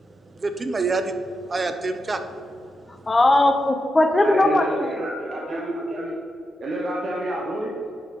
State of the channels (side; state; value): both; normal; correlation 0.87